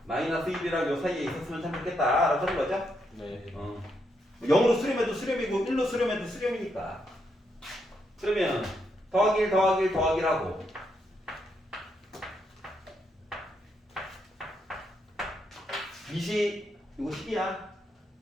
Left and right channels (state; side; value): normal; both; correlation 0.79